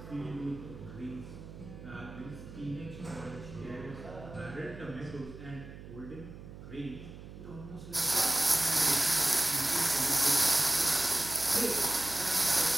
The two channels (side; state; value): right; noise; hum, 14 dB below the sound